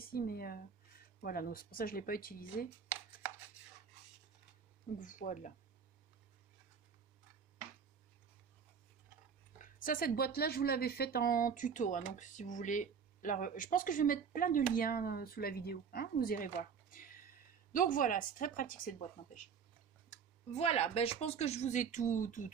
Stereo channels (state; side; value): quieter; left; 6.5 dB